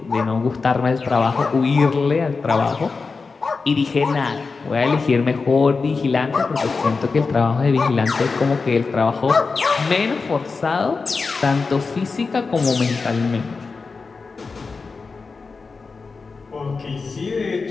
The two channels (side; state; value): right; quieter; 4.5 dB